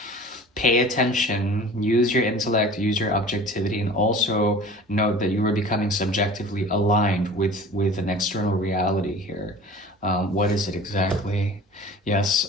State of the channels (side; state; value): both; normal; correlation 0.41